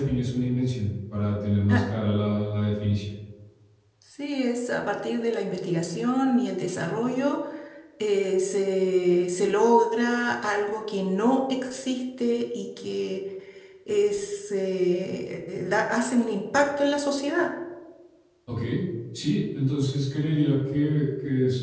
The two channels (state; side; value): identical; both; correlation 1.00